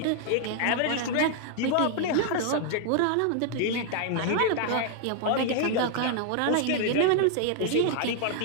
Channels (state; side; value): different; both; correlation 0.00